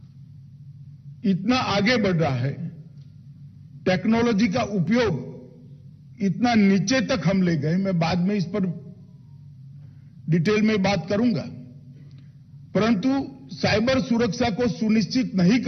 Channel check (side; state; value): both; identical; correlation 1.00